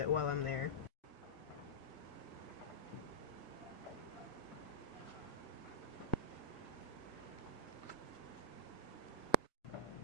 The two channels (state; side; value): late; right; 1.8 ms